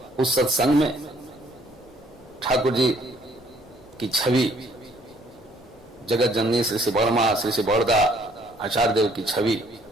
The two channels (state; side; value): normal; both; correlation 0.63